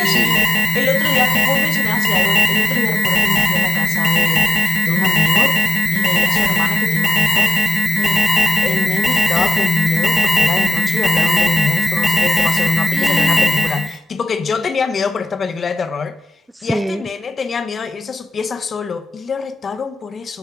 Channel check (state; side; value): normal; both; correlation 0.93